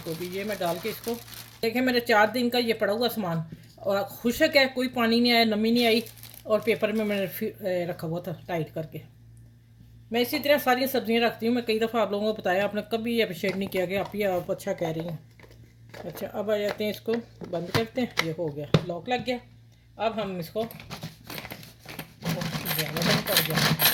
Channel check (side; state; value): both; identical; correlation 1.00